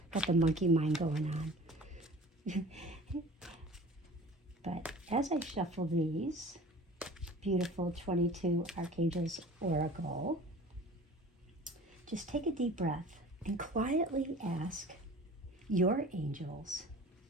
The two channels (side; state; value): both; normal; correlation 0.43